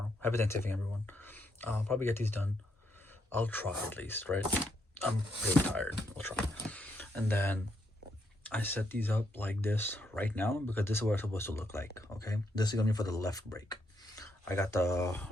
Happy Thanksgiving, everyone. I'll probably get these done. I'll try at least, right? I'm pretty tired. I'll try. And then I set these up like this right now because this is what it's supposed to look like, okay? This is gonna be for the left brake. I got the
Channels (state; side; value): normal; both; correlation 0.76